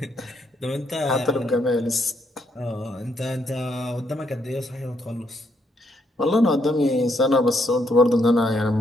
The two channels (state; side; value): normal; both; correlation 0.75